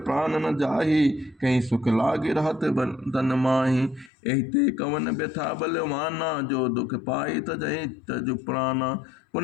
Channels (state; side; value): drops out; right; at 4.1 s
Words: प्राण न जाही, कहीं सुख लागे रहत तन माही। एहिते कवन व्यथा बलवाना, जो दुख पाई तजहि तजु प्राणा।